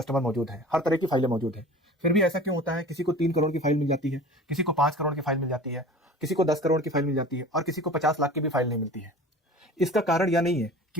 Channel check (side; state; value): both; normal; correlation 0.40